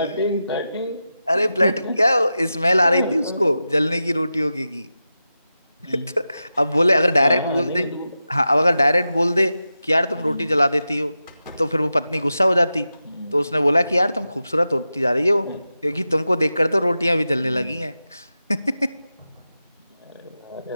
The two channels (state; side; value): inverted; both; correlation -0.92